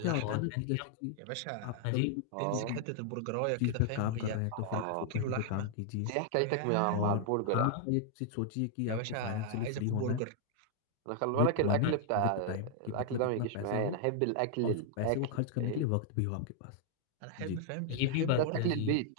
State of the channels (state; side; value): different; both; correlation 0.00